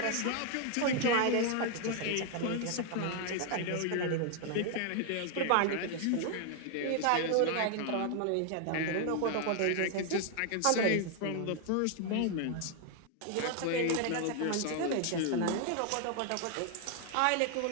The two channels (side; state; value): both; different; correlation 0.00